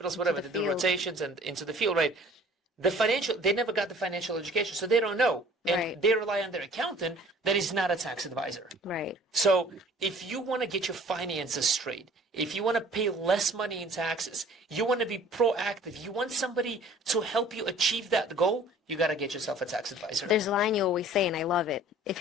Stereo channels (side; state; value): both; normal; correlation 0.51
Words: whatever. They do rotations and into the field, right? They never got the financial education, so they don't know, and they rely on their accountant that is not a tax advisor. Right. So if you want to get your finances straight, if you want to pay less money in taxes, you want to be proactive, you want somebody to help you achieve that goal, you got to get yourself a tax advisor. There's a line you always say, and I love it. If